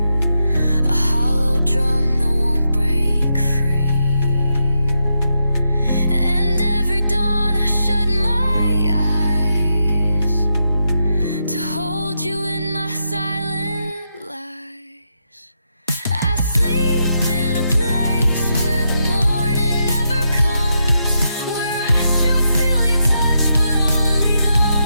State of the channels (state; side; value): inverted; both; correlation -0.83